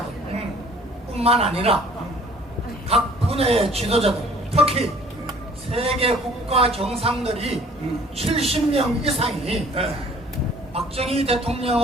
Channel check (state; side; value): normal; both; correlation 0.54